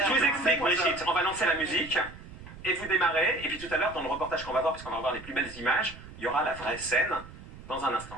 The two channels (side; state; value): right; noise; rumble, 16 dB below the sound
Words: vous explique, Brigitte. On va lancer la musique et vous démarrez. Et puis tout à l'heure, dans le reportage qu'on va voir, puisqu'on va voir les plus belles images, il y aura la vraie scène dans un